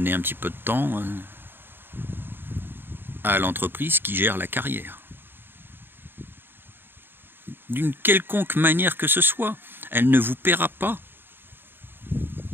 un petit peu de temps à l'entreprise qui gère la carrière. D'une quelconque manière que ce soit, elle ne vous paiera pas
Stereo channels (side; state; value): left; late; 0.099 ms